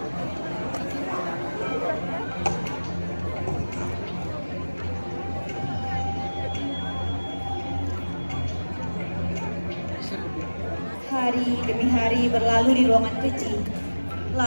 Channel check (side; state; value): both; inverted; correlation -1.00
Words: Hari demi hari berlalu di ruangan kecil.